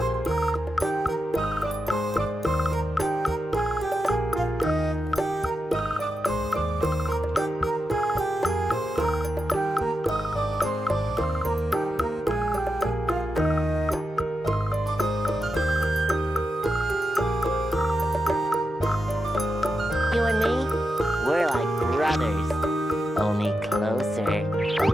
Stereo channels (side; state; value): both; normal; correlation 0.88